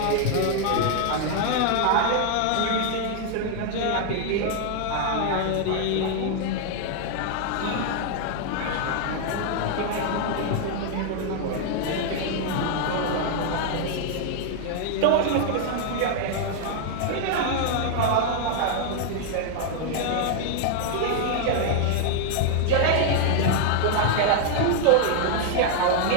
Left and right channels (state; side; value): different; both; correlation 0.00